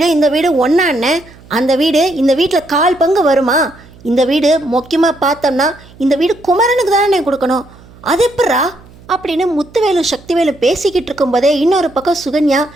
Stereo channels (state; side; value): noise; right; hum, 24 dB below the sound